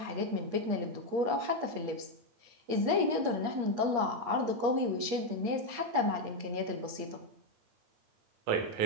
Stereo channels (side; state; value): left; late; 8.5 ms